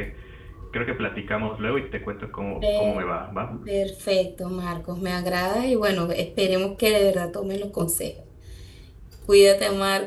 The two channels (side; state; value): both; identical; correlation 1.00